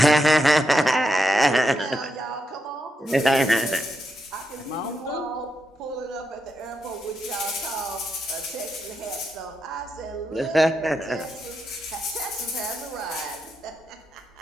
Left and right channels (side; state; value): both; normal; correlation 0.83